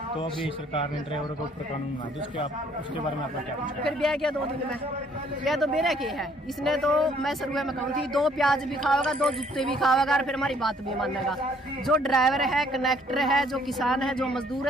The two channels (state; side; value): normal; both; correlation 0.62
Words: तो अभी सरकार ने ड्राइवरों के ऊपर कानून बना दिया, उसके बारे में आपका क्या कुछ? फिर ब्याह किया 2 दिन में, यह तो मेरे के है। इसने तो मैं शुरू में कहूँ थी 2 प्याज भी खाओगा, 2 जूते भी खाओगा और फिर हमारी बात भी मानेगा। जो ड्राइवर है, कनेक्टर है, जो किसान है, जो मजदूर